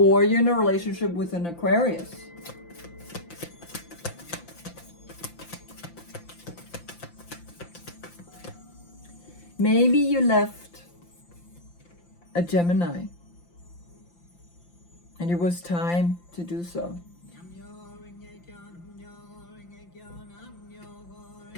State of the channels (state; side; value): late; right; 5.8 ms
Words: you're in a relationship with an Aquarius. Maybe you left a Gemini. And it was time to do so.